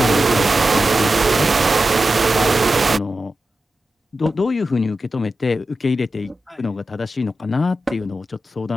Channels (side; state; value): both; normal; correlation 0.92